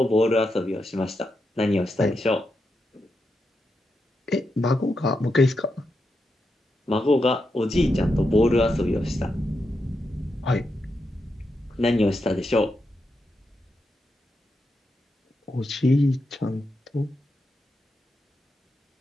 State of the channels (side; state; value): both; normal; correlation 0.86